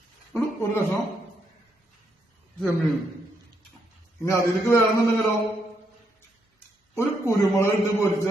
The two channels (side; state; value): both; normal; correlation 0.77